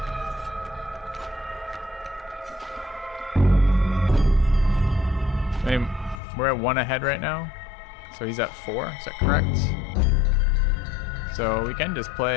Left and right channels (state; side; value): drops out; right; at 6.2 s